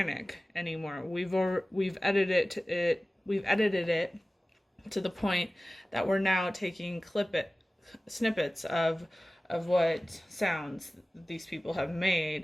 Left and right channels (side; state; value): both; normal; correlation 0.97